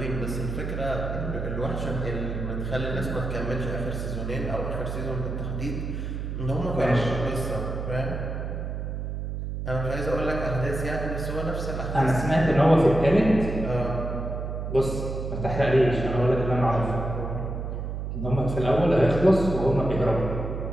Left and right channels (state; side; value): noise; right; hum, 4 dB below the sound